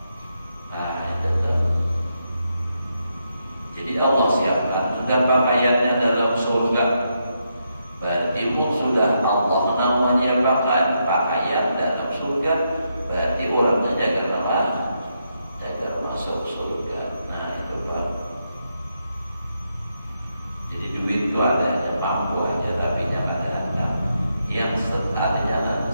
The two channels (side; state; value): both; inverted; correlation -0.81